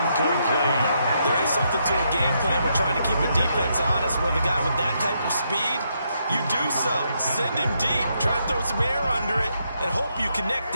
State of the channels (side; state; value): both; inverted; correlation -0.78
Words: There is something to a game plan. We're trying to keep a defense honest. With a guy with that type of speed, you do so. Send him deep. Try to throw some air under it and hope you connect